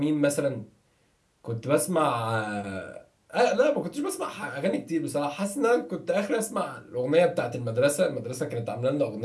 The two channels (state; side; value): identical; both; correlation 1.00